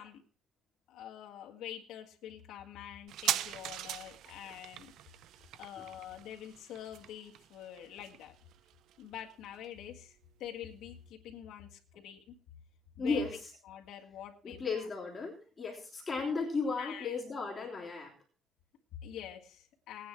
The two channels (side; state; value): both; normal; correlation 0.62